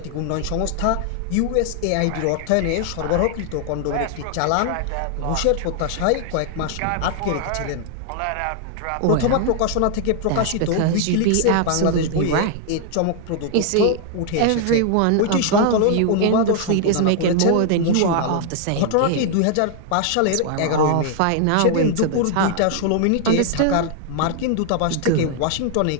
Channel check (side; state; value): both; different; correlation 0.00